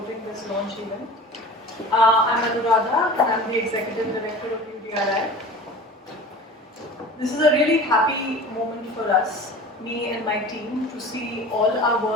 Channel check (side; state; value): both; normal; correlation 0.39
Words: this launch event. I'm Anuradha, and I'm the Executive Director of UDRI. This is a really happy moment for us, me and my team, to see all our